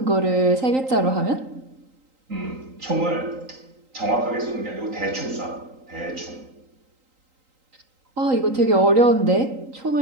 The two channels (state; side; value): late; left; 3.8 ms